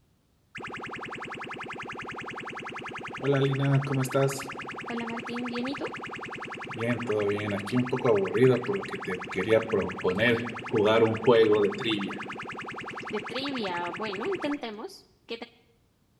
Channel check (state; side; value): identical; both; correlation 1.00